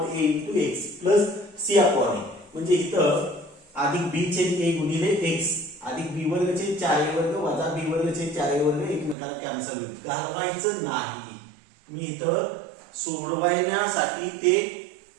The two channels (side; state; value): left; drops out; at 9.2 s